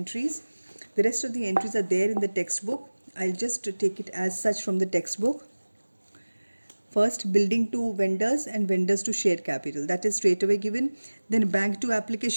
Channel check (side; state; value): both; inverted; correlation -1.00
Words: The rest of the entries are there in the textbook. I'll just take it as such from the textbook. First, building to vendors and vendors to share capital. That is straight away given. Then bank to